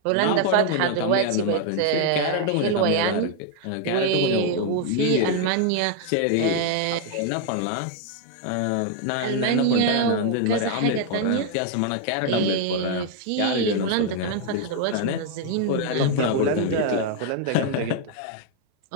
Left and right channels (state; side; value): different; both; correlation 0.00